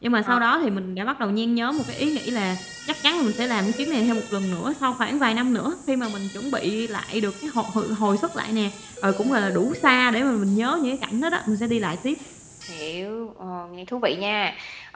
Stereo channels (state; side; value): identical; both; correlation 1.00